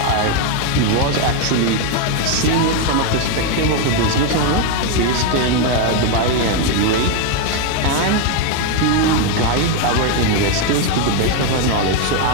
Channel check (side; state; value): both; different; correlation 0.01